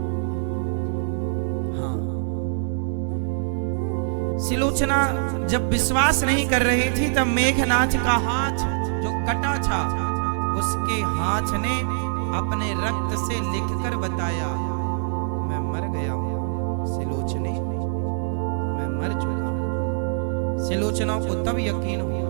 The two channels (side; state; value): left; silent; digital silence